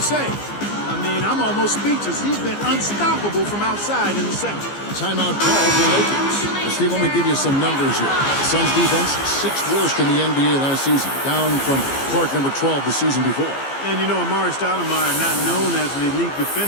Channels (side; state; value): right; late; 15 ms